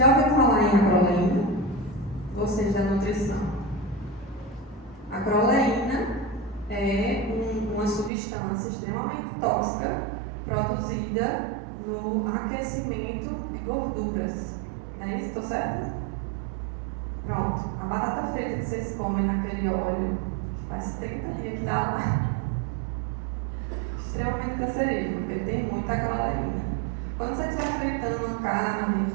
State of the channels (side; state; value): left; drops out; at 8.1 s